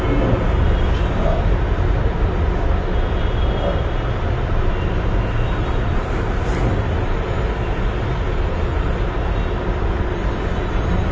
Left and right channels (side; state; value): both; identical; correlation 1.00